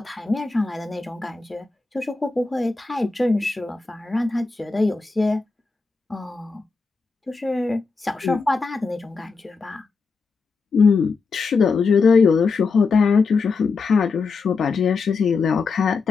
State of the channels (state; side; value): quieter; right; 4.5 dB